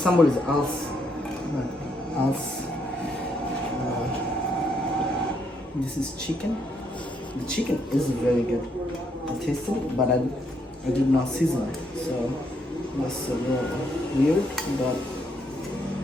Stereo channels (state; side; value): normal; both; correlation 0.74